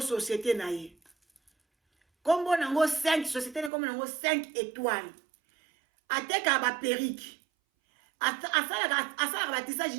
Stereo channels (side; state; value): left; drops out; at 3.7 s